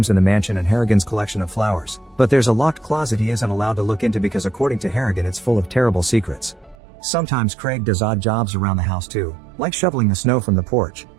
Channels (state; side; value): drops out; left; at 6.8 s